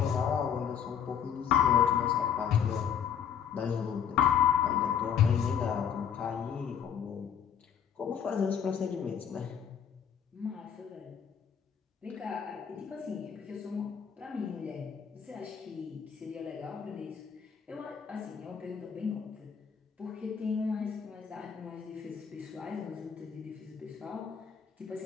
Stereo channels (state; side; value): quieter; right; 8.0 dB